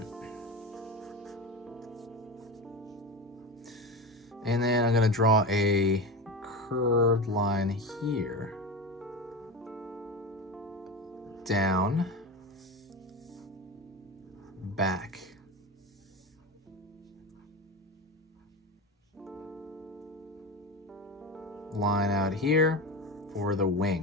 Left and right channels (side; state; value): both; normal; correlation 0.24